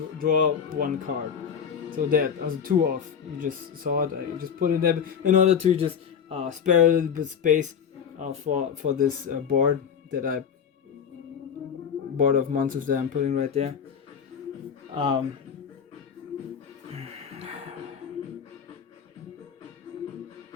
draw 1 card. So that as a 2 off, you just saw it. I just put it there in order to just spare a little bit space for this board that I board of monsters that I'm putting right there.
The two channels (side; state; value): right; quieter; 7.4 dB